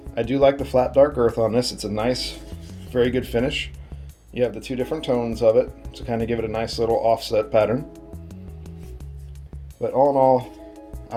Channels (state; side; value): identical; both; correlation 1.00